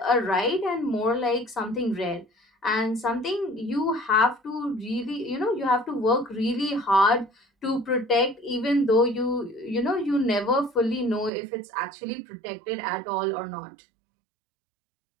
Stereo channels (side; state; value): left; drops out; at 11.3 s